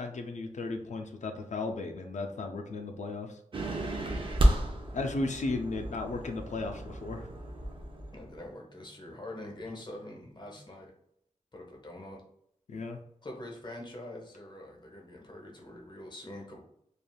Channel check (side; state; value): both; normal; correlation 0.83